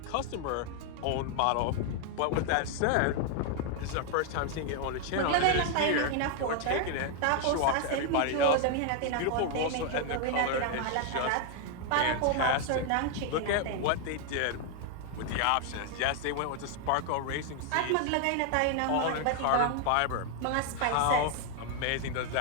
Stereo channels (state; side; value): different; both; correlation 0.00